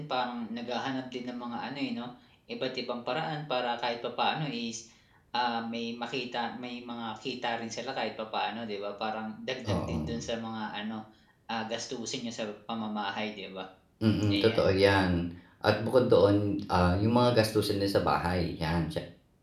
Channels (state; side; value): identical; both; correlation 1.00